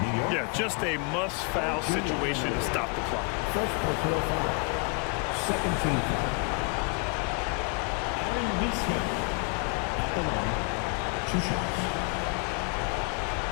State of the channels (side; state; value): right; quieter; 34.4 dB